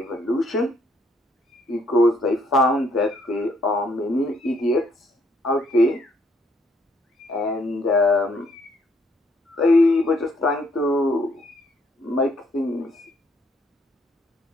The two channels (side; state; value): both; normal; correlation 0.69